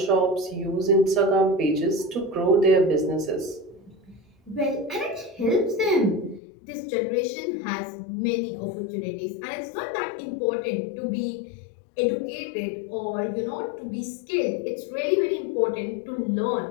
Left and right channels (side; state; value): right; drops out; at 6.4 s